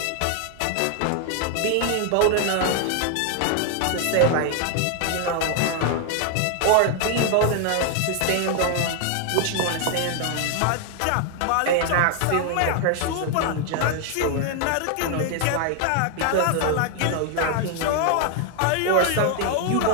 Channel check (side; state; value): both; different; correlation 0.00